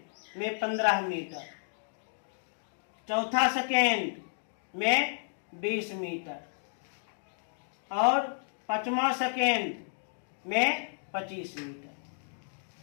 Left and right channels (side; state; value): right; silent; digital silence